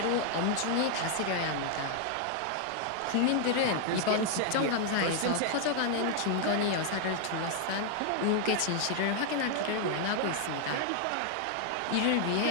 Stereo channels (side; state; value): both; different; correlation 0.00